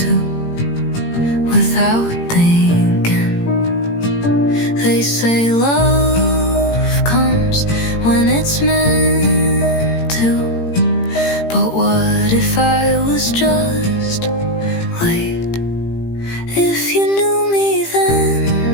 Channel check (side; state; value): right; late; 18 ms